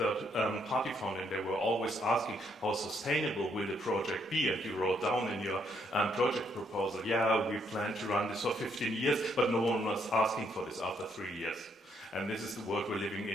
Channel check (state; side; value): normal; both; correlation 0.73